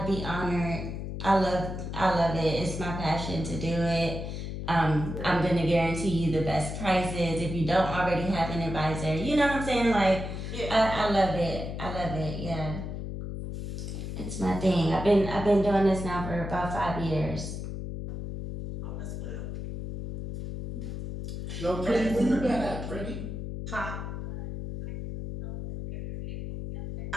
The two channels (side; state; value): left; noise; hum, 6 dB below the sound